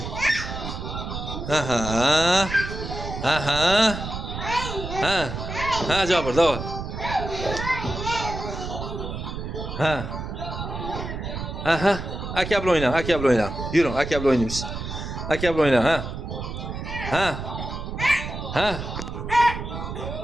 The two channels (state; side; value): noise; right; rumble, 6 dB below the sound